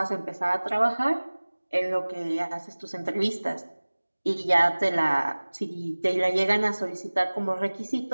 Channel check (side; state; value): both; inverted; correlation -1.00